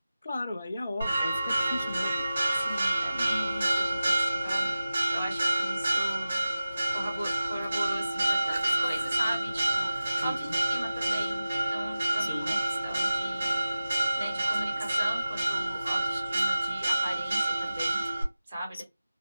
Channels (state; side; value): inverted; both; correlation -0.95